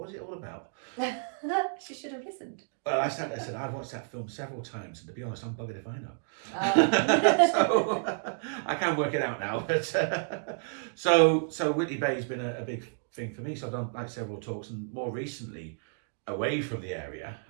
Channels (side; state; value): left; silent; digital silence